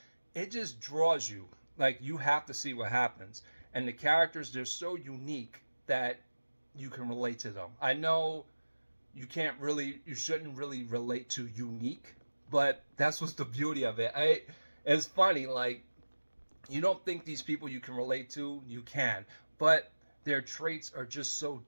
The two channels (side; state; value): both; inverted; correlation -1.00